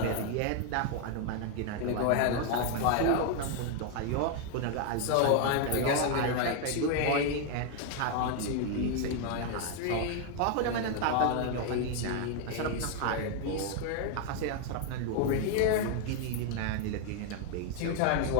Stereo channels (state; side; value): different; both; correlation 0.01